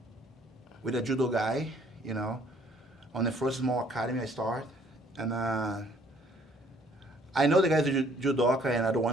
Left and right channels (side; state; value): both; normal; correlation 0.61